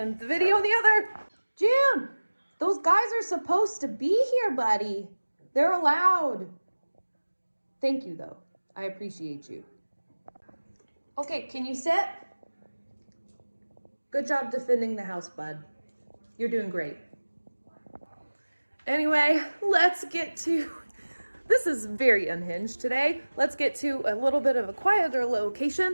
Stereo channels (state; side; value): inverted; both; correlation -1.00